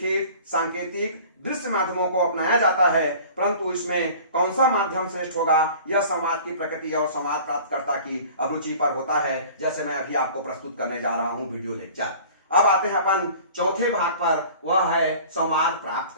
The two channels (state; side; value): inverted; both; correlation -0.45